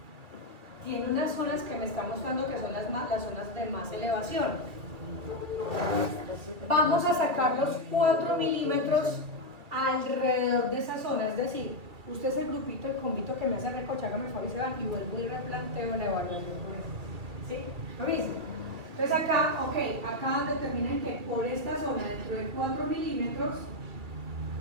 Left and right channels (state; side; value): late; left; 2.4 ms